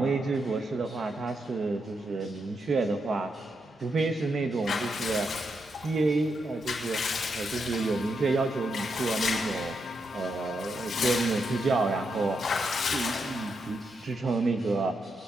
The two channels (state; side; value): normal; both; correlation 0.82